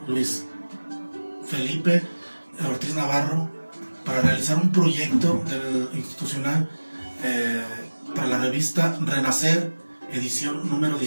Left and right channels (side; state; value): both; inverted; correlation -1.00